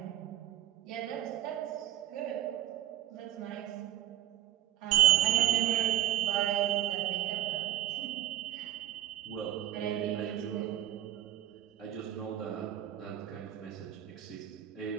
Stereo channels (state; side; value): quieter; left; 12.9 dB